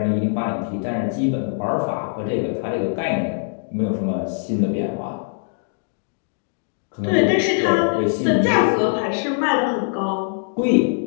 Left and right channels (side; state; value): right; silent; 63 dB below the other